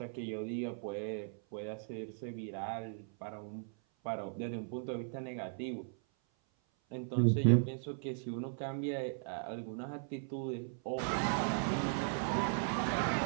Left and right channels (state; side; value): silent; left; 53 dB below the other